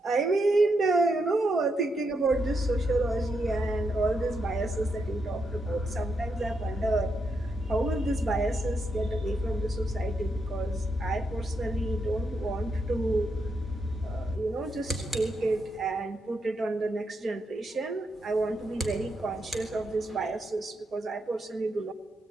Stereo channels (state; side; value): normal; both; correlation 0.82